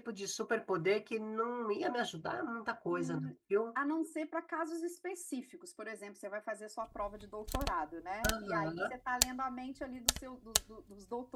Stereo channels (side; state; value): both; identical; correlation 1.00